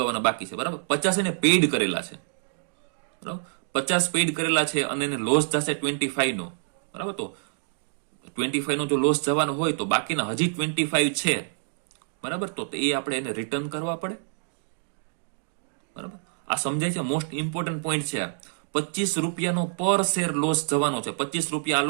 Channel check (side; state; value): left; silent; digital silence